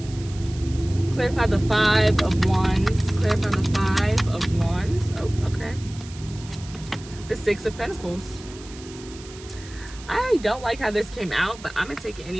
Clarify the Five of Wands. Clarify the Five of Wands. Oh, okay. The Six of Pentacles. I don't like how this came out, but I'm going to take it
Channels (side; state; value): right; noise; hiss, 18 dB below the sound